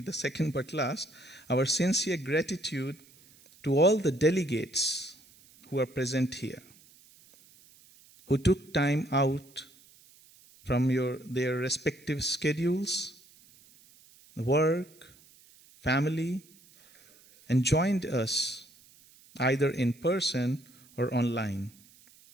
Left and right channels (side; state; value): right; noise; hiss, 26 dB below the sound